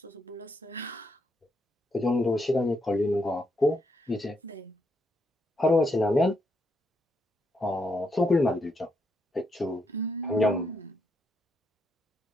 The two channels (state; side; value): normal; both; correlation 0.78